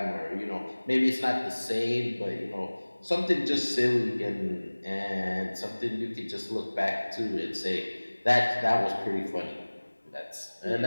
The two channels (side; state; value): both; inverted; correlation -1.00